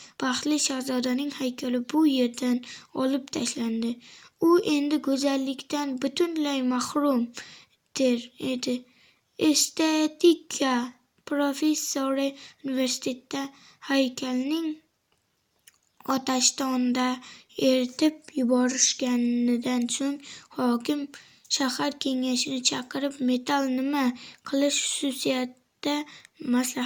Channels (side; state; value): both; identical; correlation 1.00